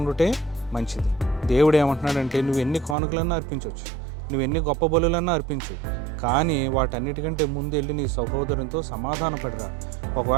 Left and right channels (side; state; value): left; drops out; at 3.0 s